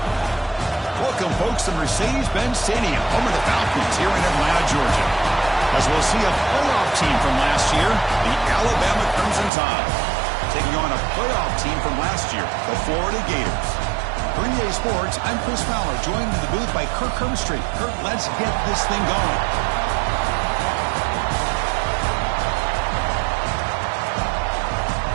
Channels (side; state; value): left; drops out; at 9.5 s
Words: Welcome, folks, to Mercedes-Benz Stadium, home of the Falcons here in Atlanta, Georgia. As we'll see a playoff team from last year, the Alabama Crimson Tide, taking on a playoff team from last year, the Florida Gators. For EA Sports, I'm Chris Fowler, joined in the booth by Kirk Herbstreit. Kirk, let's get this thing going.